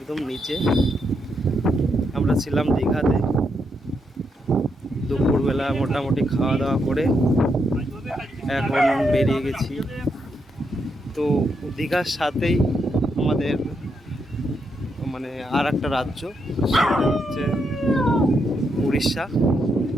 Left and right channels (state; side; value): normal; both; correlation 0.80